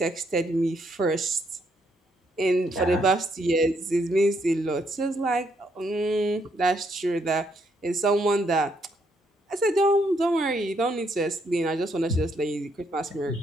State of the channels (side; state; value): both; normal; correlation 0.74